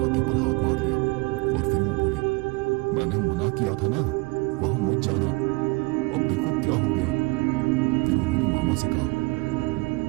पर हाथ मार लिया और फिर वो बोली, मैंने मना किया था ना, वहां मत जाना, अब देखो क्या हो गया। फिर उन्होंने मामा से कहा,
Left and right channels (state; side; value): quieter; left; 26.5 dB